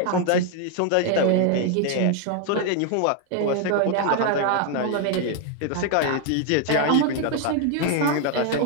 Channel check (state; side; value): different; both; correlation 0.00